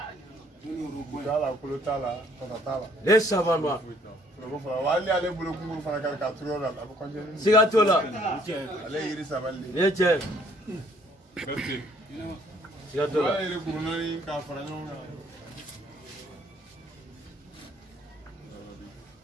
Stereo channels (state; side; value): normal; both; correlation 0.62